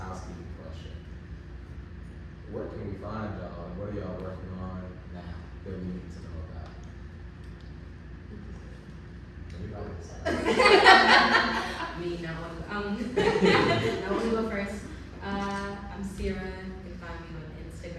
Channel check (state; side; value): identical; both; correlation 1.00